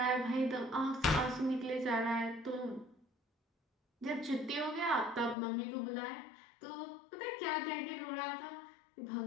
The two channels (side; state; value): right; drops out; at 5.4 s